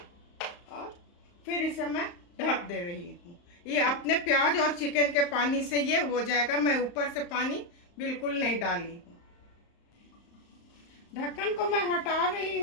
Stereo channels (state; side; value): late; right; 35 ms